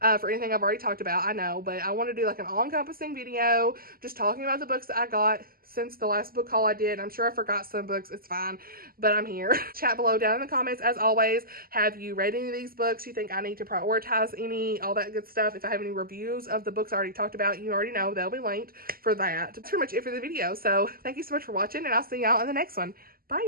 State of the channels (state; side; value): late; left; 0.42 ms